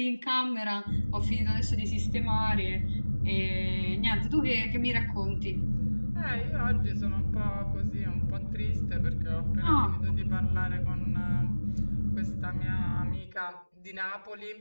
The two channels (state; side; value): inverted; both; correlation -1.00